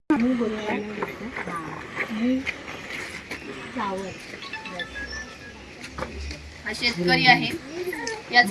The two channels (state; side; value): identical; both; correlation 1.00